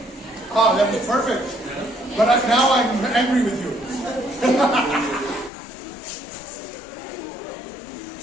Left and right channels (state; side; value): drops out; right; at 5.5 s